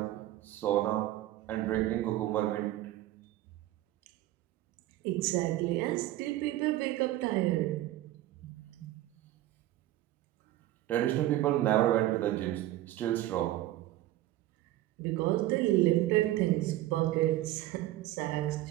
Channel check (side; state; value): left; quieter; 15.1 dB